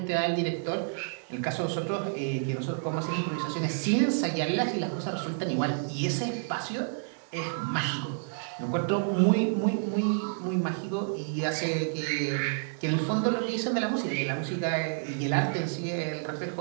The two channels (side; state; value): left; silent; digital silence